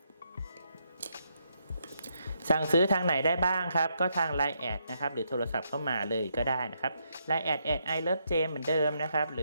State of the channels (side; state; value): both; inverted; correlation -0.77